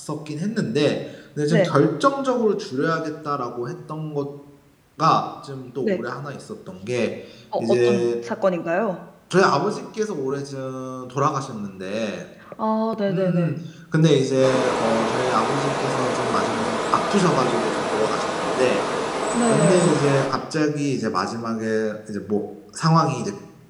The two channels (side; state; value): both; identical; correlation 1.00